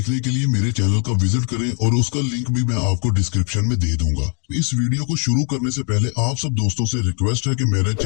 के लिए मेरे चैनल का विजिट करें और उसका लिंक भी मैं आपको डिस्क्रिप्शन में दे दूंगा। इस वीडियो को शुरू करने से पहले आप सब दोस्तों से रिक्वेस्ट है कि मेरे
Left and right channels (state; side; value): quieter; right; 39.4 dB